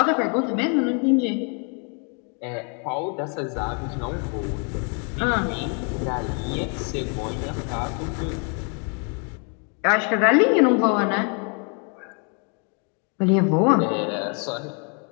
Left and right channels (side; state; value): right; quieter; 37.7 dB